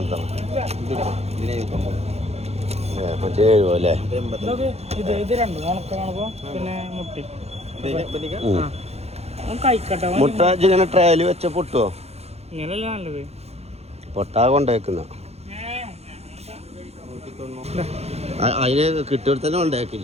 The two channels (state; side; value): late; left; 0.31 ms